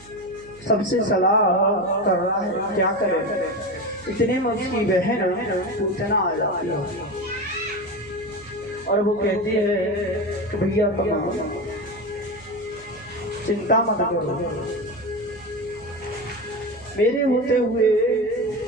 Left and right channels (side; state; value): right; noise; hum, 23 dB below the sound